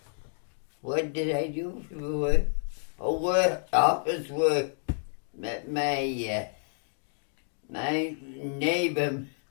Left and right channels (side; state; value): right; silent; 58 dB below the other